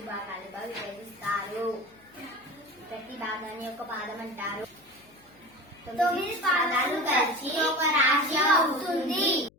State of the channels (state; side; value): noise; left; hum, 29 dB below the sound